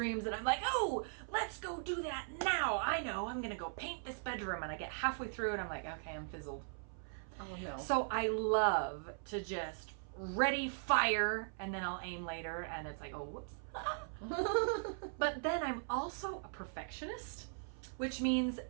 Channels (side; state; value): left; silent; 52 dB below the other